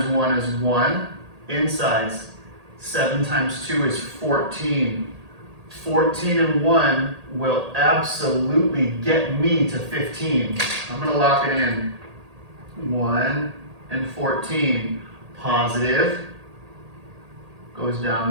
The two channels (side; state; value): left; late; 1.8 ms